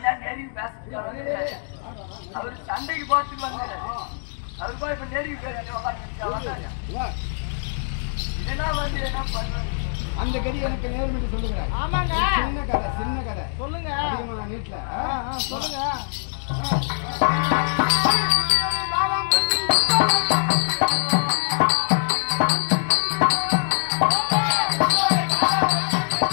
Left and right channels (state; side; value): silent; right; digital silence